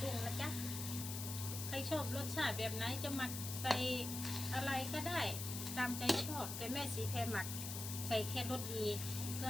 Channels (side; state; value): left; noise; hiss, 5 dB below the sound